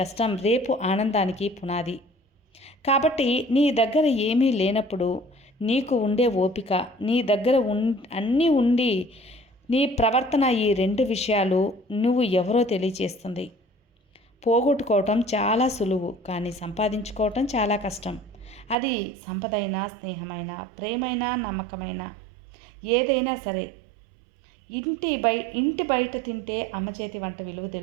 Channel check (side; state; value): left; drops out; at 18.8 s